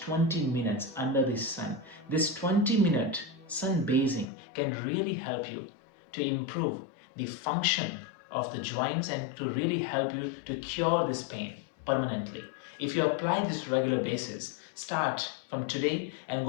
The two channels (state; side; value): drops out; right; at 4.2 s